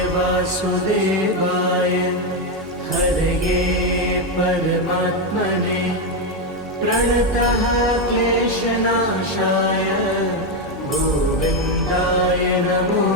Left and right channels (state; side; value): normal; both; correlation 0.07